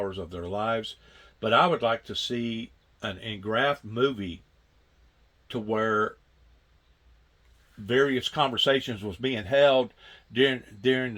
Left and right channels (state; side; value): identical; both; correlation 1.00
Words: of their lives. But I would like to see an engraphed movie to where various conversations was being held during